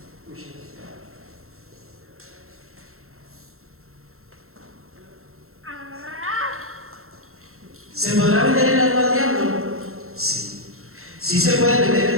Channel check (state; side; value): late; left; 0.62 ms